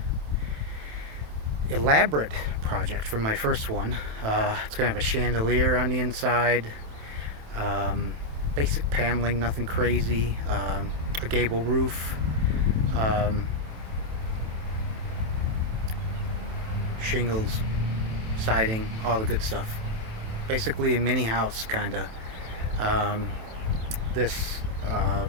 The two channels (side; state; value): left; late; 27 ms